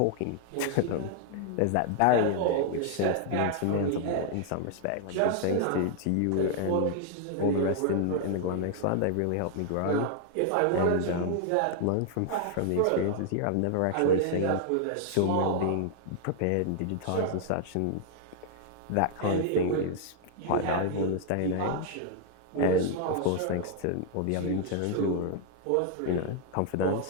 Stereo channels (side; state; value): both; different; correlation -0.01